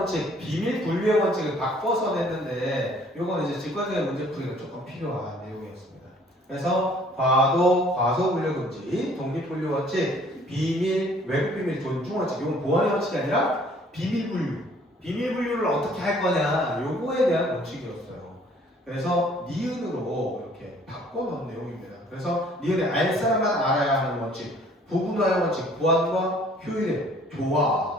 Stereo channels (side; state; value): both; normal; correlation 0.57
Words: 비밀 분류의 원칙을 바꿔서 냈는데 요거는 이제 직관적인 문제풀이가 조금 필요한 내용이었습니다. 그래서 과소 분류 금지, 독립 분류 원칙, 비밀, 외국 비밀 존중 원칙, 이건 보안의 원칙이 아니라 비밀 분류. 비밀 분류를 어떻게 할 거냐, 요거에 대한 원칙이었어요. 그래서 니은으로 이렇게 바꿔놓은 내용입니다. 그래서 니은의 알 사람만 알아야 하는 원칙, 부분화의 원칙, 보안과 효율의